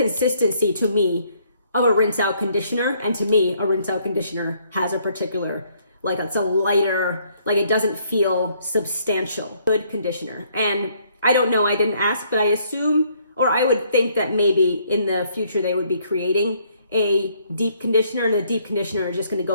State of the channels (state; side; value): inverted; both; correlation -0.67